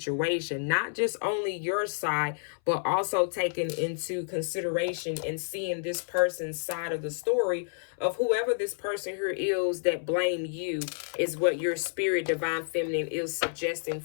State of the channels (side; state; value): right; silent; 58 dB below the other